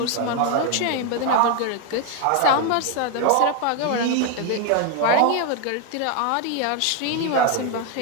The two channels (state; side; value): different; both; correlation 0.01